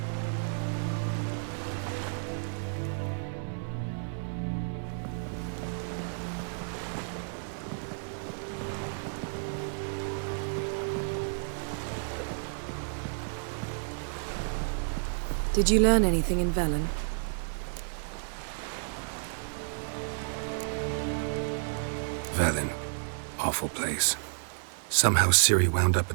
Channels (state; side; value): silent; left; digital silence